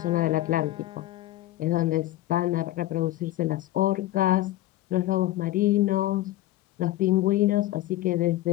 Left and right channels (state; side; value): quieter; right; 15.7 dB